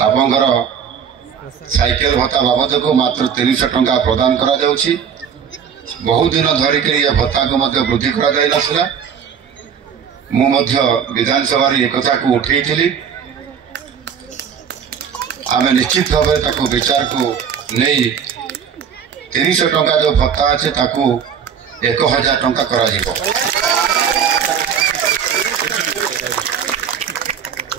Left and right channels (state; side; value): quieter; left; 7.5 dB